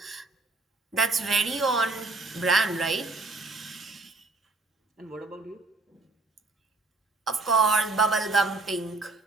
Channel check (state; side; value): quieter; left; 3.3 dB